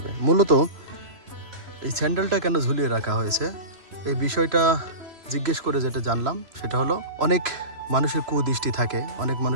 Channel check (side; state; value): left; late; 3.0 ms